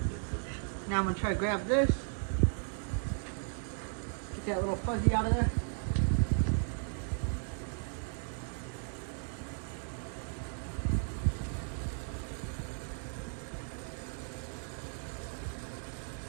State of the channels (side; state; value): left; silent; 54 dB below the other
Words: Now I'm gonna try to grab this, get that little fuzzy out of there.